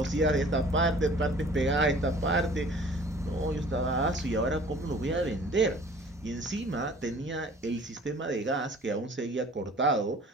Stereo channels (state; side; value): normal; both; correlation 0.49